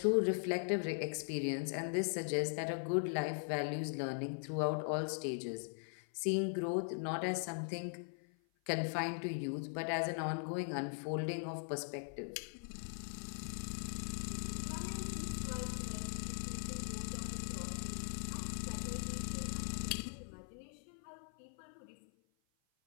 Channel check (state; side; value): silent; right; 51 dB below the other